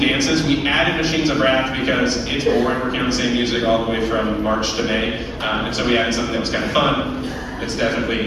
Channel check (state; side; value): identical; both; correlation 1.00